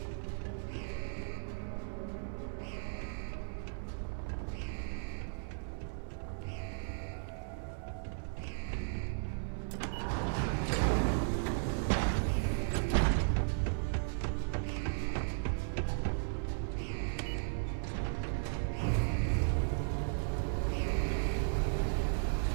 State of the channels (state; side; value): silent; left; 54 dB below the other